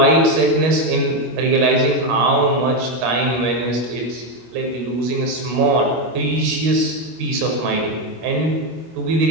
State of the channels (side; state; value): left; late; 25 ms